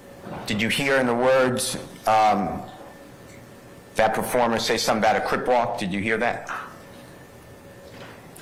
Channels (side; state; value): both; identical; correlation 1.00